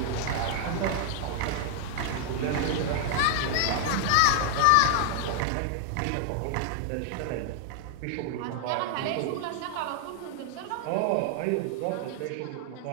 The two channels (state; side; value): different; both; correlation 0.00